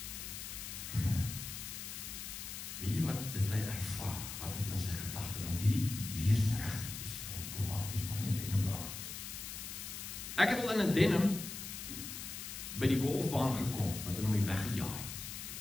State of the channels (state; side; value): noise; left; hiss, 8 dB below the sound